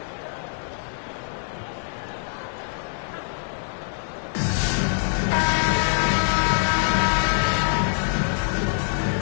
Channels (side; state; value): right; silent; digital silence